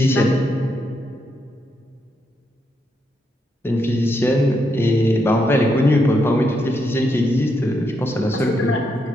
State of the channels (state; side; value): normal; both; correlation 0.80